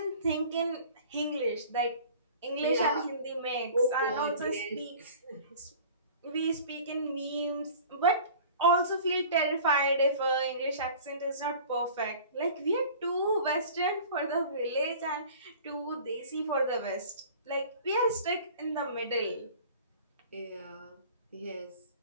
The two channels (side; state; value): both; inverted; correlation -0.45